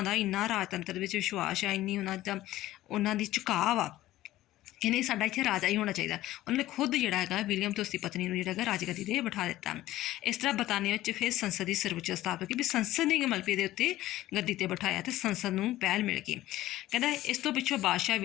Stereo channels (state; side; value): quieter; right; 15.4 dB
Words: ਦਾ ਇੰਨਾ ਰਾਜਤੰਤਰ ਵਿੱਚ ਵਿਸ਼ਵਾਸ ਆ, ਇੰਨੀ ਉਹਨਾਂ ਦੀ ਝੁਕਾਅ ਆ ਕਿ ਨਹੀਂ ਸਾਡਾ ਇੱਥੇ ਰਾਜਾ ਹੀ ਹੋਣਾ ਚਾਹੀਦਾ। ਉਹਨਾਂ ਨੇ ਖੁਦ ਜਿਹੜਾ ਹੈਗਾ ਵਿਲੀਅਮ ਅਤੇ ਉਸਦੀ ਪਤਨੀ ਨੂੰ ਜਿਹੜਾ ਹੈਗਾ ਰਾਜਗੱਦੀ 'ਤੇ ਬਿਠਾ ਦਿੱਤਾ। ਇਸ ਤਰ੍ਹਾਂ ਬਰਤਾਨੀਆ ਵਿੱਚ ਫਿਰ ਸੰਸਦ ਦੀ ਸਰਵਉੱਚ ਸਥਾਪਤ ਹੋਈ ਵੀ ਸੰਸਦ ਨੇ ਮਲਬੇ ਦੇ ਉੱਤੇ ਗੱਦੀ 'ਤੇ ਬਿਠਾਇਆ ਅਤੇ ਸੰਸਦ ਨੂੰ ਪਹਿਲ ਮਿਲ ਗਈ। ਕਹਿੰਦਾ ਇਸ ਤੋਂ ਪਿੱਛੋਂ ਬਾਦਸ਼ਾਹ